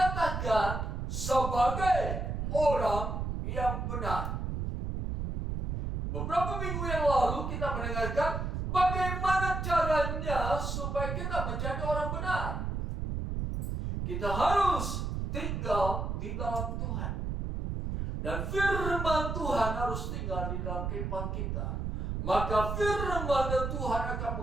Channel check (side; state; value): right; noise; rumble, 2 dB below the sound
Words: sebagai orang yang benar. Beberapa minggu yang lalu kita mendengarkan bagaimana caranya supaya kita menjadi orang benar. Kita harus tinggal di dalam Tuhan. Dan firman Tuhan harus tinggal di dalam kehidupan kita. Maka firman Tuhan akan